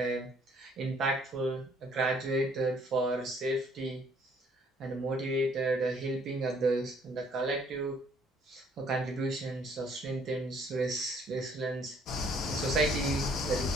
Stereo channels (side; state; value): both; normal; correlation 0.62